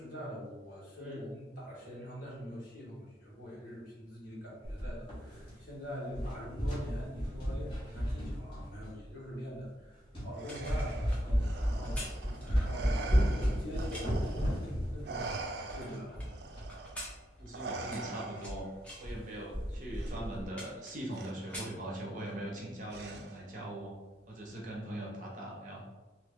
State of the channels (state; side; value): normal; both; correlation 0.82